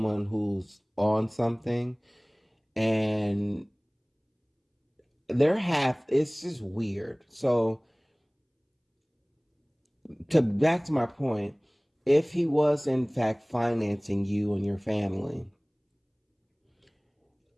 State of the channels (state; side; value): identical; both; correlation 1.00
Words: who's on something, and it's just weird. So to back to my point, if he was in fact financing you and your family,